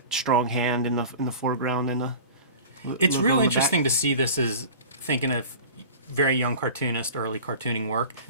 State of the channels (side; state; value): both; inverted; correlation -0.38